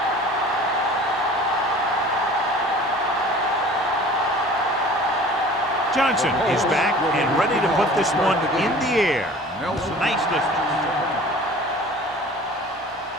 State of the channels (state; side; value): normal; both; correlation 0.45